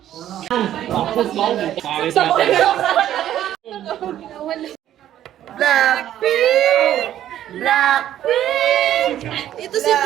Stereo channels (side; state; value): left; quieter; 11.8 dB